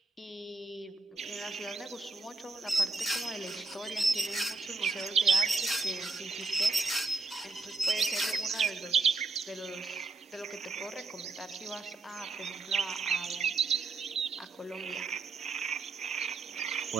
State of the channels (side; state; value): left; quieter; 3.7 dB